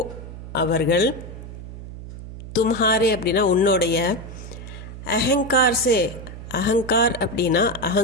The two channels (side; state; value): right; noise; hum, 12 dB below the sound